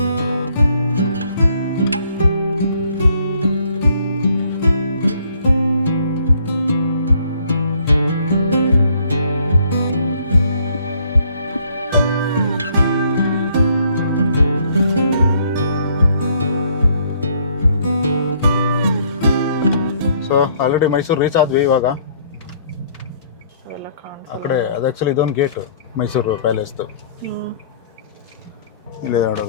ಸೊ ಆಲ್ರೆಡಿ ಮೈಸೂರು ರೀಚ್ ಆದ್ವಿ ಇವಾಗ. ಅವೆಲ್ಲ ಕಾಣಿಸ್ ಆ ಕಡೆ ಅದು ಆ್ಯಕ್ಚುಲಿ ಇದೊಂದು ಗೇಟು ಮೈಸೂರು ಪ್ಯಾಲೇಸ್ದು. ಇಲ್ಲಿ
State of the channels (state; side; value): inverted; both; correlation -0.63